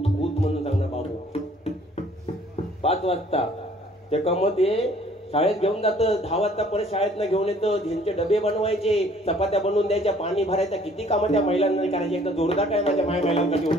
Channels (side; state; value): both; normal; correlation 0.57